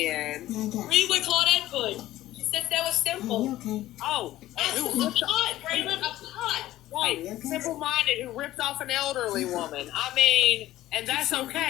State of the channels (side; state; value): right; quieter; 15.0 dB